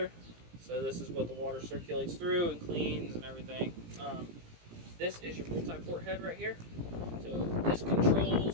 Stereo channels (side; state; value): left; late; 17 ms